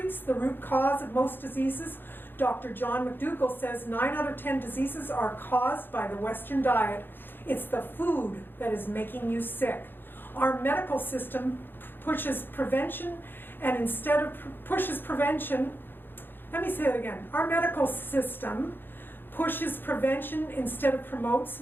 the root cause of most diseases. Dr. John McDougall says 9 out of 10 diseases are caused by the Western diet. It's the food that is making you sick. Our medical system pushes prevention, and instead of pushes prevention, let me say it again. Our medical system pushes prevention instead of promotes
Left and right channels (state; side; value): late; right; 0.098 ms